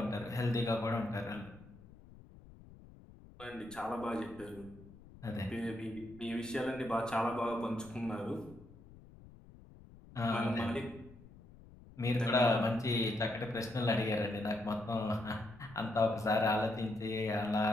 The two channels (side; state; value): left; noise; rumble, 20 dB below the sound